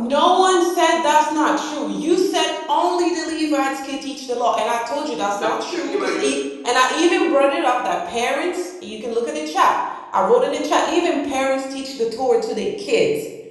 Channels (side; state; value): both; identical; correlation 1.00